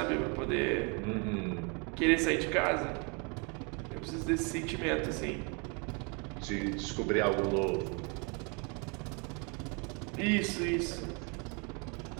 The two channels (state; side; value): quieter; left; 33.5 dB